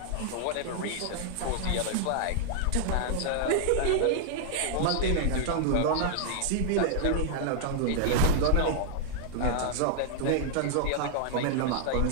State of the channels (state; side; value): different; both; correlation -0.01